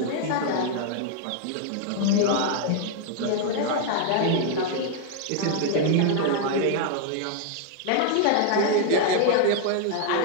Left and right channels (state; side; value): different; both; correlation 0.00